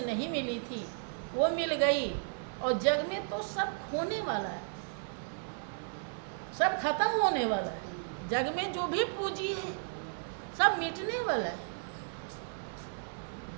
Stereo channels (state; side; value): silent; left; digital silence